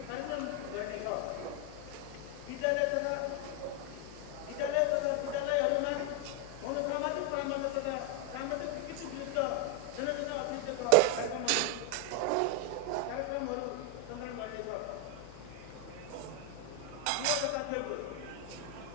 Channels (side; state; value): both; different; correlation 0.01